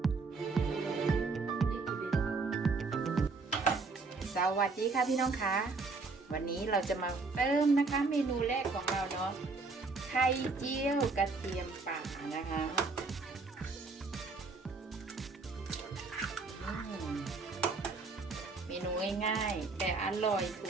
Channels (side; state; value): left; quieter; 4.0 dB